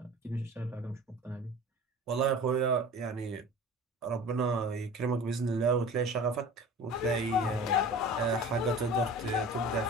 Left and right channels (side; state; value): both; normal; correlation 0.39